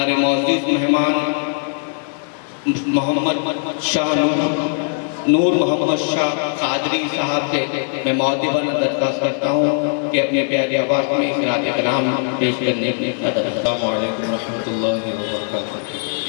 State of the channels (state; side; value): silent; right; 58 dB below the other